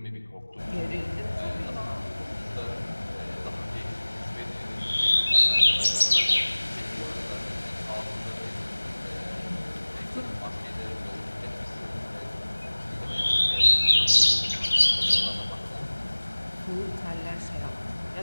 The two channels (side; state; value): both; inverted; correlation -1.00